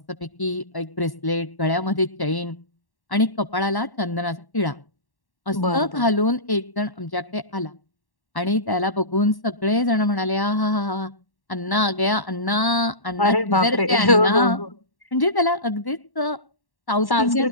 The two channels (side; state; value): right; late; 1.1 ms